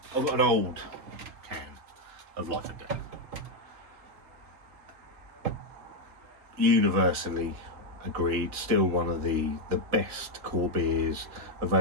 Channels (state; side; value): late; left; 3.8 ms